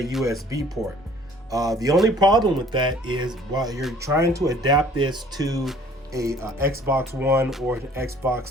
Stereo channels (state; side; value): normal; both; correlation 0.54